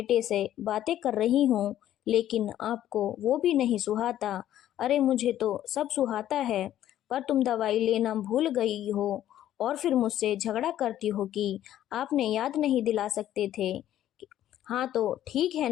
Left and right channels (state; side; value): quieter; right; 12.2 dB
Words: से बातें कर रही हूँ, लेकिन आपको वो भी नहीं सुहाता। अरे मुझे तो सब सुहाता है, पर तुम दवाई लेना भूल गई हो और फिर मुझसे झगड़ा करती हो कि आपने याद नहीं दिला सकते थे। हाँ तो ठीक है